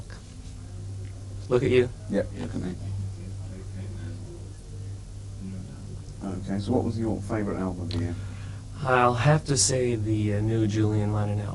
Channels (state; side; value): identical; both; correlation 1.00